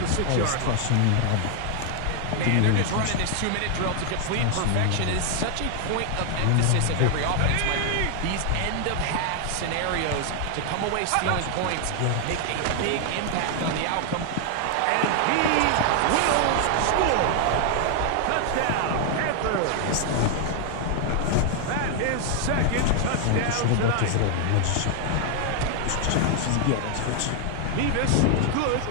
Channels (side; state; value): both; different; correlation 0.00